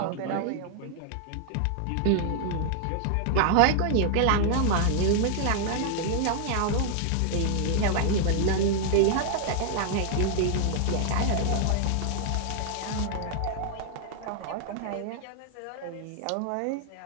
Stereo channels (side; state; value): both; different; correlation 0.00